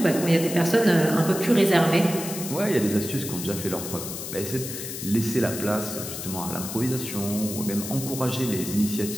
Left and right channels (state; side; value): noise; left; hiss, 8 dB below the sound